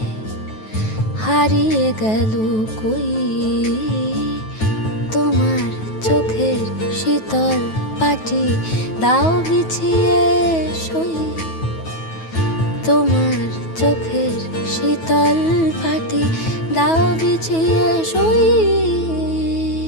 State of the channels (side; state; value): right; late; 9.3 ms